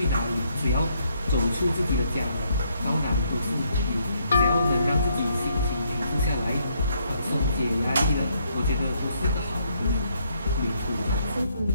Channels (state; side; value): inverted; both; correlation -0.72